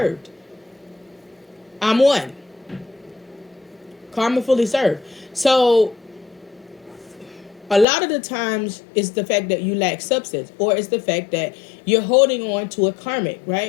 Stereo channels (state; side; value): drops out; right; at 7.9 s